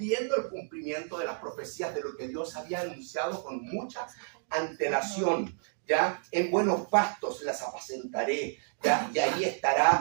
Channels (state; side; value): silent; left; digital silence